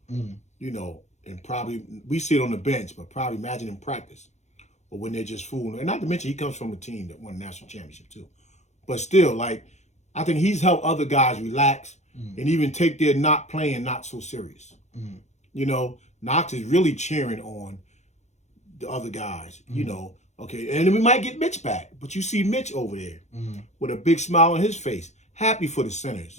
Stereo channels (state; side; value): late; right; 0.33 ms